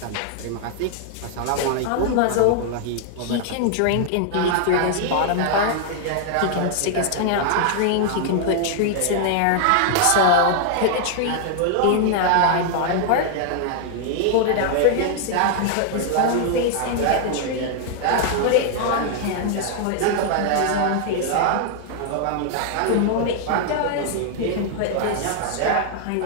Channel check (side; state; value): both; different; correlation 0.00